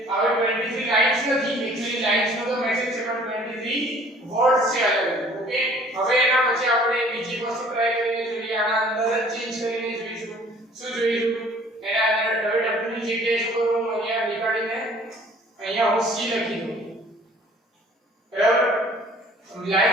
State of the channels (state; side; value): normal; both; correlation 0.53